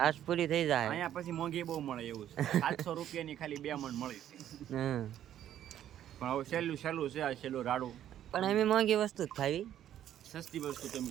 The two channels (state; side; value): quieter; left; 11.2 dB